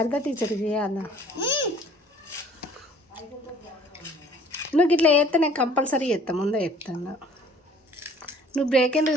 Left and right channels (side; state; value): both; normal; correlation 0.53